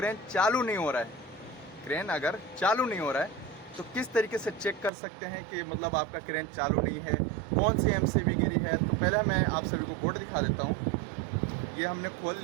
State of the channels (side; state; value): left; drops out; at 4.9 s